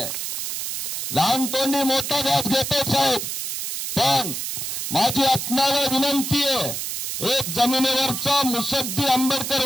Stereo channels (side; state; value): right; noise; hiss, 4 dB below the sound